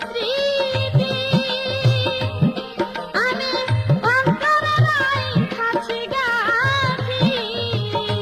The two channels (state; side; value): identical; both; correlation 1.00